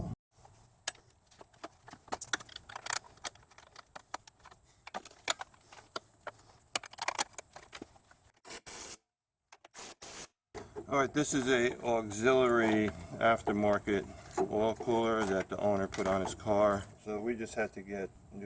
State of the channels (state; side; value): identical; both; correlation 1.00